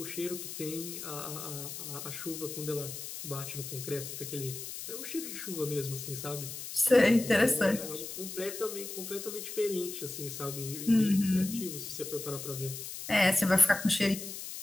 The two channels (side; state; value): left; noise; hiss, 8 dB below the sound